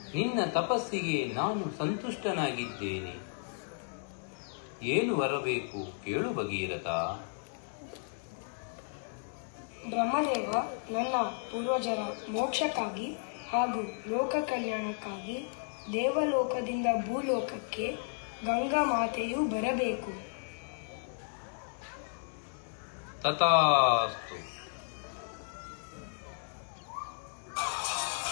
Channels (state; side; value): silent; right; digital silence